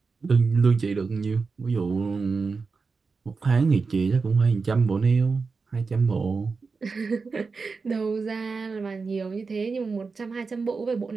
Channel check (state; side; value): quieter; left; 4.6 dB